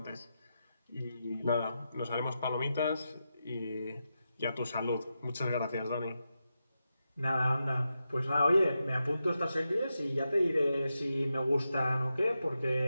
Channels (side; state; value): both; inverted; correlation -0.88